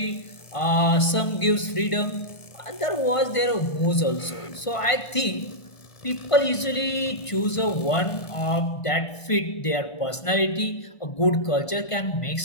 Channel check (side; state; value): right; late; 1.5 ms